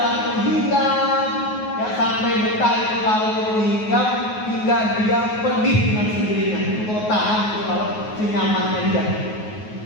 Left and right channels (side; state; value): right; late; 9.4 ms